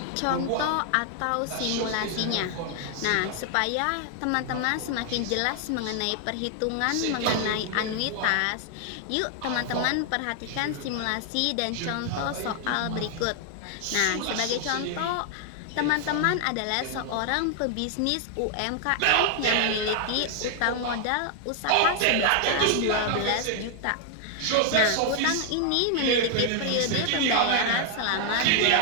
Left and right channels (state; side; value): different; both; correlation 0.00